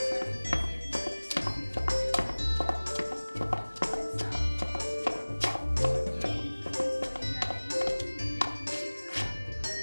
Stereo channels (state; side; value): inverted; both; correlation -1.00